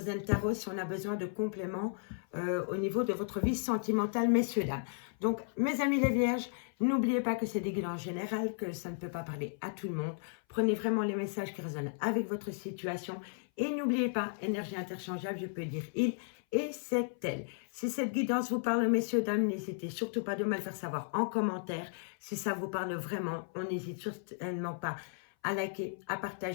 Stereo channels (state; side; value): silent; right; 55 dB below the other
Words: Tarot si on a besoin de compléments au niveau de votre vie sentimentale, messieurs, dames. Donc, mes amis les vierges, n'oubliez pas que c'est des guidances générales, que ça ne peut pas parler à tout le monde. Prenez vraiment les messages qui résonnent avec votre situation et n'oubliez pas, énergie interchangeable, je peux dire il et c'est elle. Si cette guidance vous parle, messieurs, dames, n'hésitez surtout pas de me le faire savoir en commentaire. Si ça vous parle vraiment, on n'hésite certainement pas à liker, à